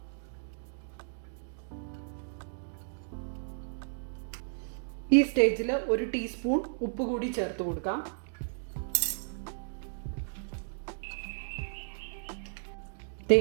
ഈ സ്റ്റേജിൽ 1 ടീസ്പൂൺ ഉപ്പ് കൂടി ചേർത്ത് കൊടുക്കാം.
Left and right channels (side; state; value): left; silent; digital silence